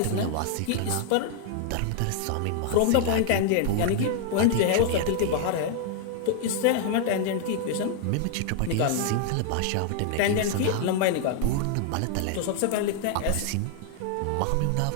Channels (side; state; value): both; different; correlation 0.00